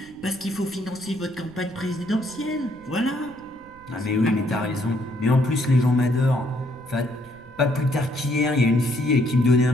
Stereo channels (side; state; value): right; noise; rumble, 25 dB below the sound